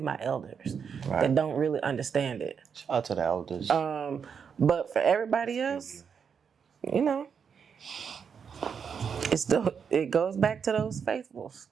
my elders that don't really understand it. Shout out to the elders. But for everybody else, it goes back to those faithfuls.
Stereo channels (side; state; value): left; quieter; 6.7 dB